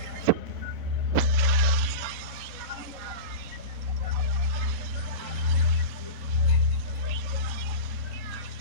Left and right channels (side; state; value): left; late; 3.0 ms